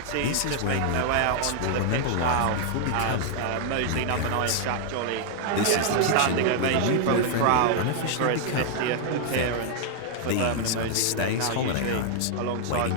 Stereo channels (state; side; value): different; both; correlation 0.00